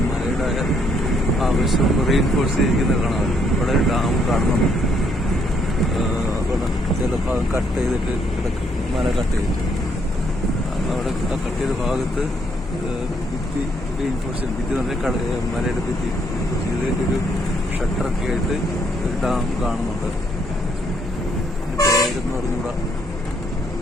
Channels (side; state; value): both; normal; correlation 0.71